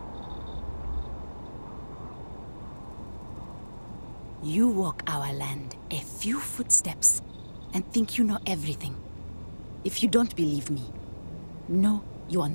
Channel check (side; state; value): both; inverted; correlation -1.00